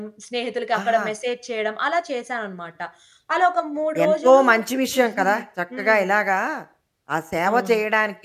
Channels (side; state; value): both; identical; correlation 1.00